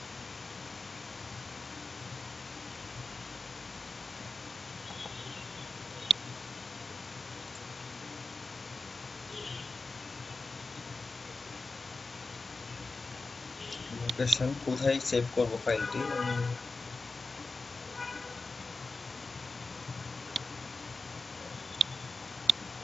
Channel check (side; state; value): both; normal; correlation 0.91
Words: লোকেশন কোথায় সেভ করব ফাইলটি,